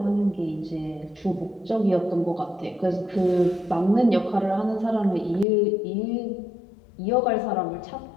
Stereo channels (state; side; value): drops out; right; at 5.5 s